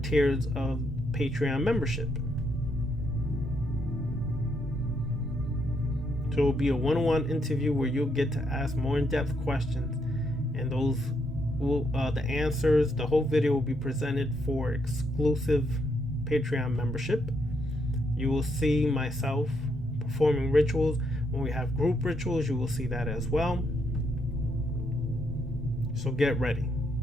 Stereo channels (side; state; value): both; normal; correlation 0.77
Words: of Patreon membership. So it will be a one-on-one interview where you'll get to ask more in-depth questions, and those will the answers, the whole video will be presented for exclusive Patreon membership. You will see myself performing rituals. When we have group rituals, you will see that as well. So get ready.